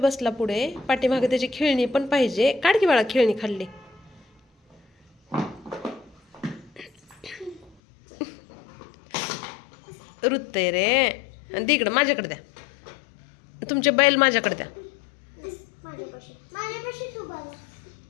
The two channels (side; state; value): right; drops out; at 7.8 s